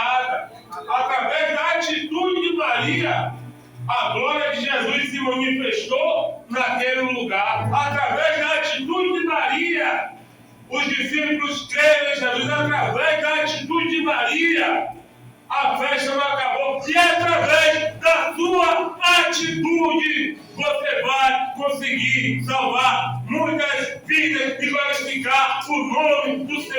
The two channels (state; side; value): identical; both; correlation 1.00